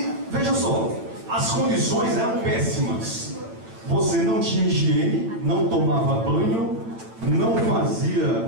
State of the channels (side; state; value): left; late; 8.9 ms